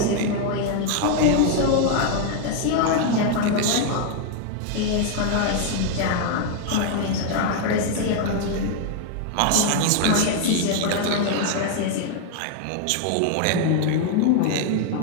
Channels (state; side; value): different; both; correlation 0.00